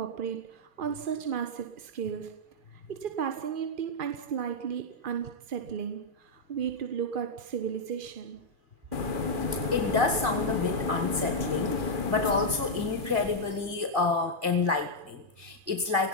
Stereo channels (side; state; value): left; late; 2.1 ms